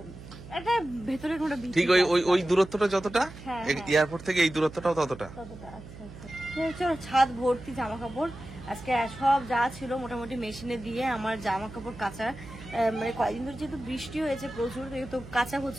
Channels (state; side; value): noise; right; hum, 15 dB below the sound